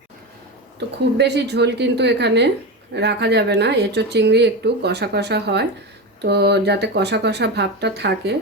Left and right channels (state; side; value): normal; both; correlation 0.19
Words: তো খুব বেশি ঝোল কিন্তু এখানে রাখা যাবে না, এঁচোড় চিংড়ি একটু কষা কষা হয়, তো যাতে কষা কষা ভাবটা থাকে,